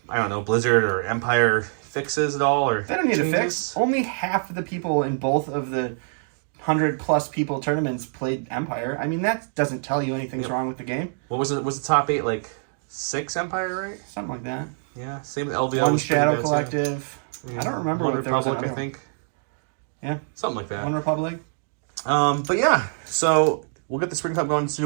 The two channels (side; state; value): left; silent; digital silence